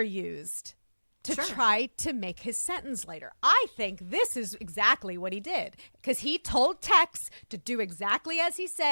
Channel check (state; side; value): inverted; both; correlation -1.00